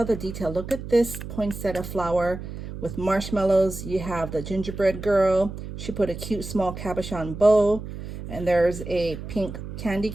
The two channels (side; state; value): right; noise; hum, 9 dB below the sound